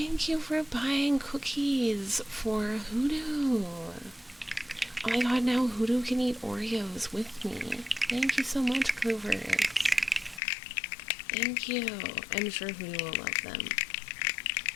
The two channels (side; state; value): right; drops out; at 10.4 s